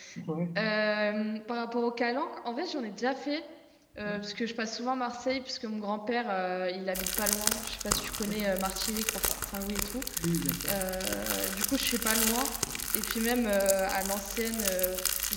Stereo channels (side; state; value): both; identical; correlation 1.00